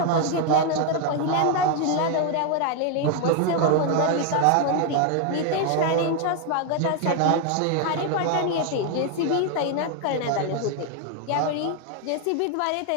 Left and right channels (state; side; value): different; both; correlation 0.01